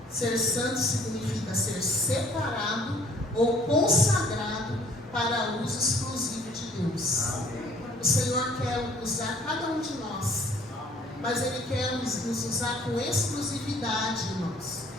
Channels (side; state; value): both; normal; correlation 0.56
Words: Ser santo significa ser separado ou consagrado para uso exclusivo de Deus. O Senhor quer usar cada um de nós, mas Ele quer nos usar com exclusividade, irmãos.